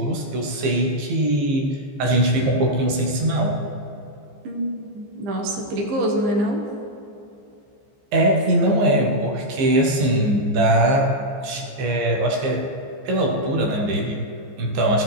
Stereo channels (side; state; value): left; late; 14 ms